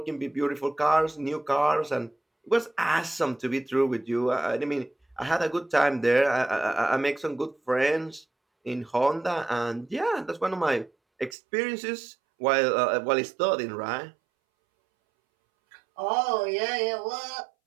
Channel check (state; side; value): drops out; left; at 11.4 s